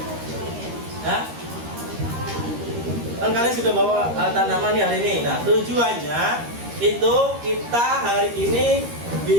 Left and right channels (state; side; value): late; left; 13 ms